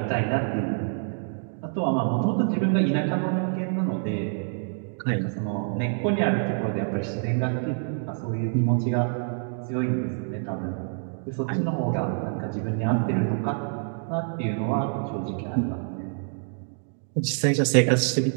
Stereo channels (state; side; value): silent; left; 60 dB below the other